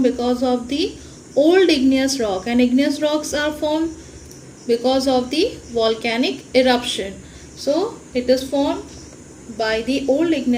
because of the old igneous rock, and igneous rocks are formed because of the volcanic eruption. So it is formed by the old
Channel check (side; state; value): both; identical; correlation 1.00